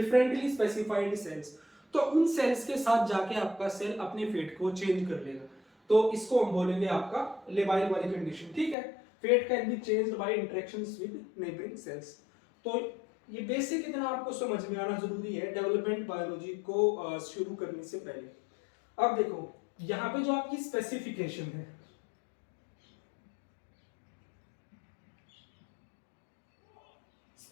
स्पेसिफाइड सेल्स। तो उन सेल्स के साथ जाके आपका सेल अपने फेट को चेंज कर लेगा। तो इसको हम बोलेंगे आपका लेबाइल वाली कंडीशन। ठीक है, fate can be changed by interactions with neighbouring cells. तो ये बेसिक इतना आपको समझ में आना जरूरी है डेवलपमेंट बायोलॉजी को शुरू करने से पहले। अब देखो यहाँ पे जो आपकी स्पेसिफिकेशन है,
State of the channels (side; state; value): right; drops out; at 8.8 s